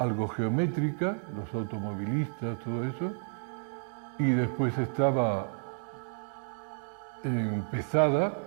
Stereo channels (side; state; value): left; silent; digital silence